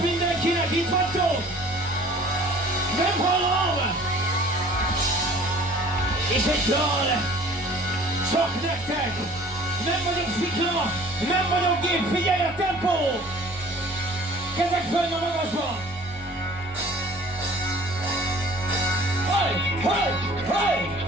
mindenkinek, itt vagytok? Nem hallom! És egy dal, csak nektek! Nem vagyok szikla, nem vagyok gép, figyelj a tempó! Kezek fönn a magasba! Haj!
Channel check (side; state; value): both; normal; correlation 0.49